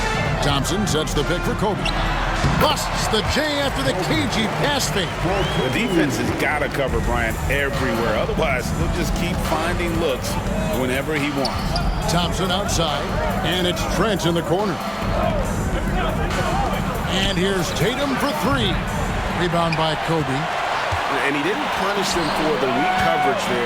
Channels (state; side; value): identical; both; correlation 1.00